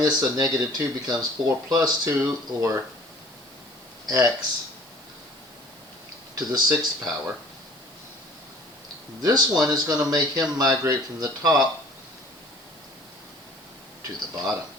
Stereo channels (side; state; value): right; noise; hiss, 25 dB below the sound